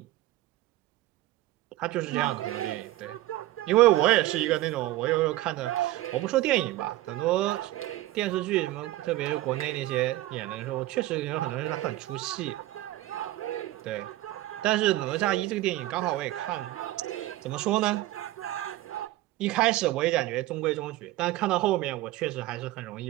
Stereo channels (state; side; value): quieter; left; 16.5 dB